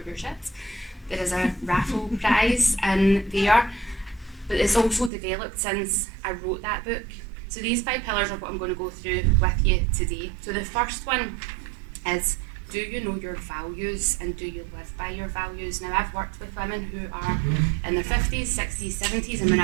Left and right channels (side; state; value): left; drops out; at 5.1 s